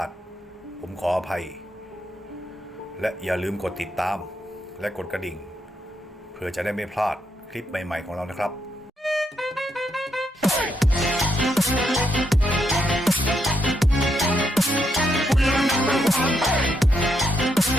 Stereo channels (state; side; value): normal; both; correlation 0.78